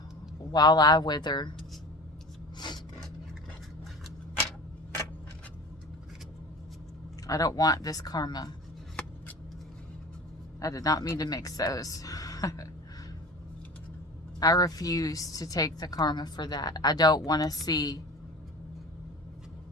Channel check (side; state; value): both; normal; correlation 0.37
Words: While I wither. I don't want this karma. I did not mean to mix those. I refuse to take the karma for that. I don't want to see.